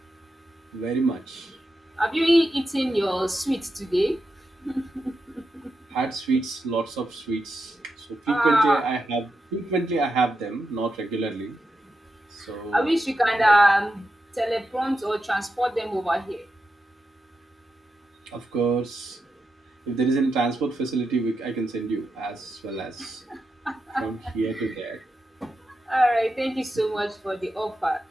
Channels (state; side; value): normal; both; correlation 0.87